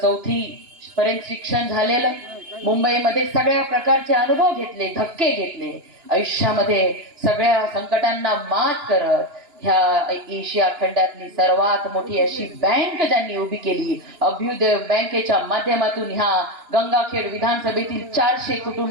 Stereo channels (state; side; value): late; left; 2.9 ms